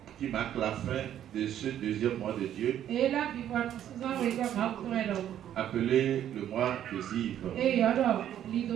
qui marque la fin de ce deuxième mois de Dieu, appelé le mois des Ives.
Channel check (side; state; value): left; quieter; 10.8 dB